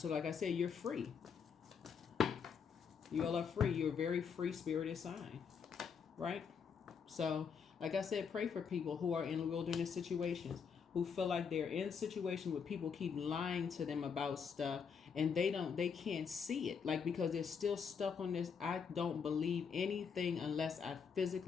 like I said, you're free. You all are free. You're a very free-spirited sign, right? So, like I said, pray for people who are in wilderness situations, who feel like they're in a situation where people keep lying to them about stuff, and they can't see it, like, because they're still stuck on this, I don't believe anything unless I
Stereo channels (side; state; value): right; quieter; 6.4 dB